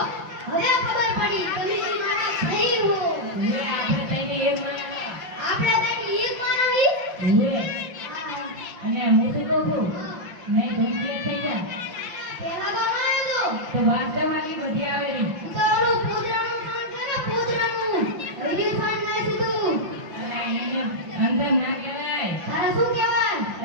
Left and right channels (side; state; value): left; late; 5.7 ms